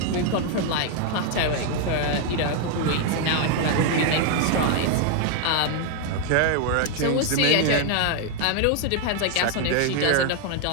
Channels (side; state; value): both; different; correlation 0.00